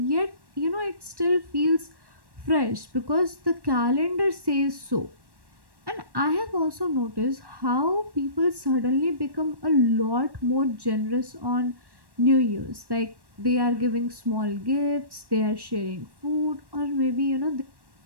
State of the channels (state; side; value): late; left; 1.1 ms